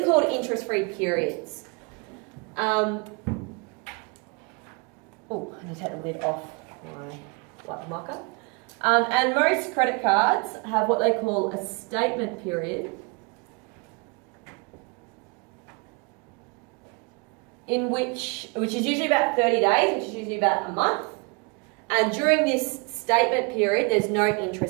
are called interest-free periods. Oh, I need to take the lid off my black marker. And most credit cards have what they call a statement period, which is usually about 30 days, which is usually about a month. And during this statement period, there's no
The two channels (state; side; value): quieter; left; 31.2 dB